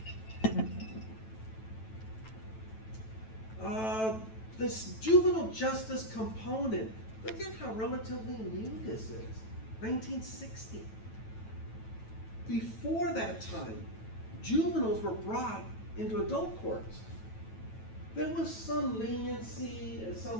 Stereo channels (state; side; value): late; right; 9.1 ms